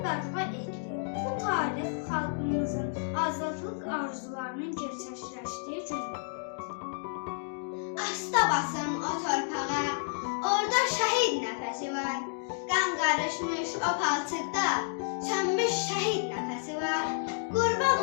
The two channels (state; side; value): silent; right; digital silence